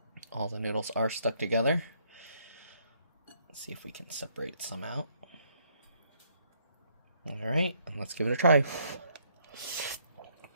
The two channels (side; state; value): both; inverted; correlation -0.69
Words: All the noodles are stuck together. Let's see if we can separate some out. Alright, let's give it a try.